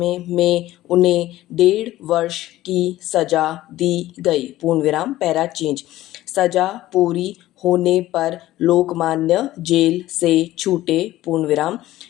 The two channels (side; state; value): right; quieter; 15.5 dB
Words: में उन्हें 1.5 वर्ष की सजा दी गई। पूर्णविराम। Para change. सजा पूरी होने पर लोकमान्य जेल से छूटे। पूर्णविराम।